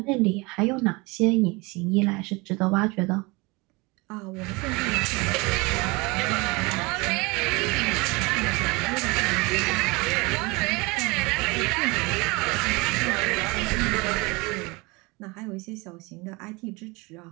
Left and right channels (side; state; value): left; quieter; 25.7 dB